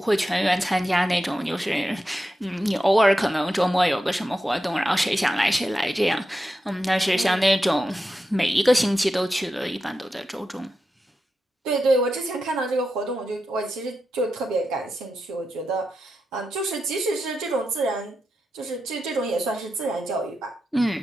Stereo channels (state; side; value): normal; both; correlation 0.89